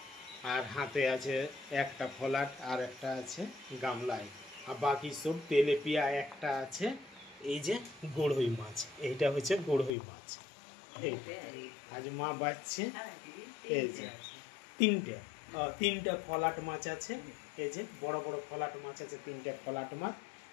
আর হাতে আছে একটা ফলাট আর একটা আছে গামলায় আর বাকি সব তেলেপিয়া একটা আছে এই যে গড়ই মাছ এইটা হচ্ছে গড়ই মাছ আজ মা বাঁচছে এই যে তিনটা ফলাট মাছ আছে এই যে বড় বড় ফলাট মাছ আছে তিনটা ফলাট মাছ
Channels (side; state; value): right; drops out; at 9.9 s